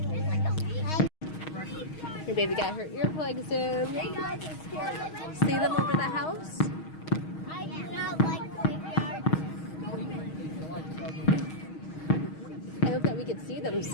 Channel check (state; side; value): late; right; 6.4 ms